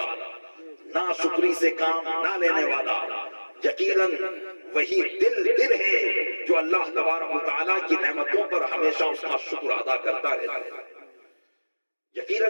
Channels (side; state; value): both; inverted; correlation -1.00